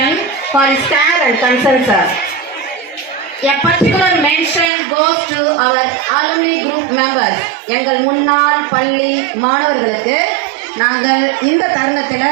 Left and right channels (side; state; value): left; drops out; at 4.7 s